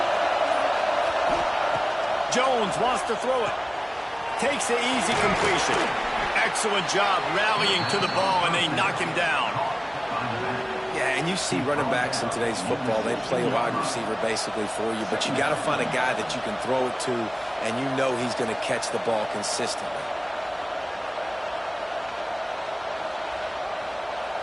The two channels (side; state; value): both; identical; correlation 1.00